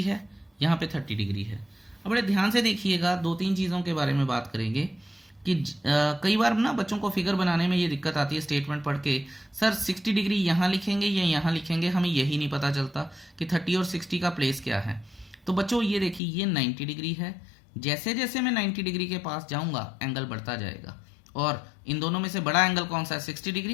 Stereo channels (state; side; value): drops out; right; at 16.2 s